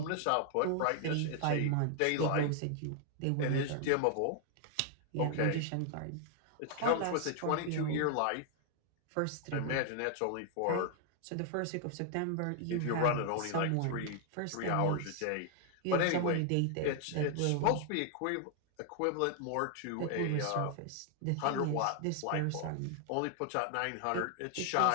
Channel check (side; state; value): both; different; correlation 0.00